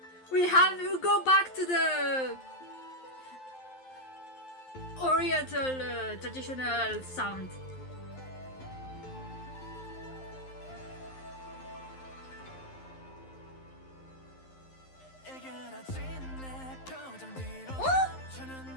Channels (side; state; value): right; late; 11 ms